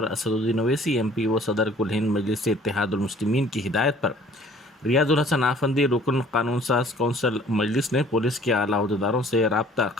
असदुद्दीन ओवैसी MPO सदर कुल हिंद मजलिस इत्तेहादुल मुस्लिमीन की हिदायत पर रियाजुल हसन आफंदी रुकन कानून साज कौंसल मजलिस ने पुलिस के आला अहदेदारों से राब्ता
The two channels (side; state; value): both; normal; correlation 0.54